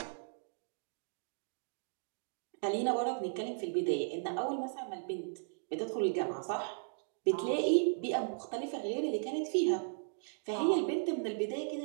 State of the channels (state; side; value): silent; left; digital silence